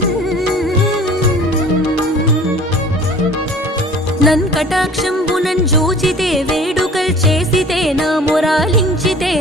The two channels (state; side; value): normal; both; correlation 0.46